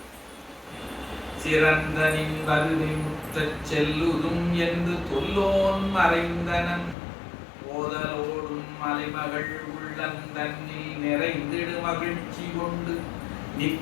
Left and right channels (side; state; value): right; drops out; at 7.0 s